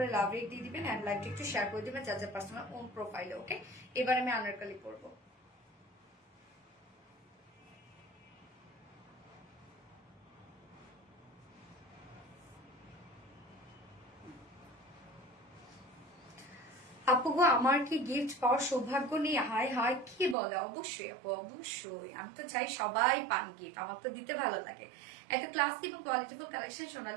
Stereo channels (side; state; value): left; drops out; at 20.4 s